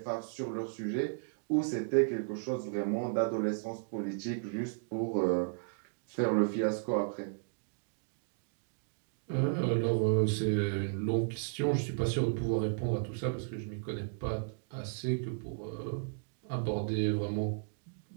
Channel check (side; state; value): left; silent; digital silence